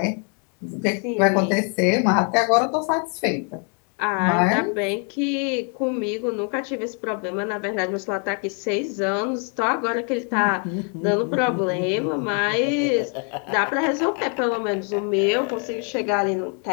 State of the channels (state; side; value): quieter; right; 39.9 dB